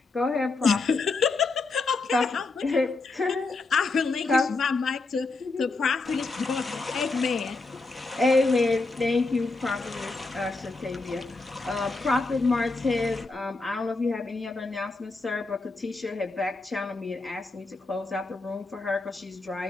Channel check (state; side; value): quieter; right; 3.6 dB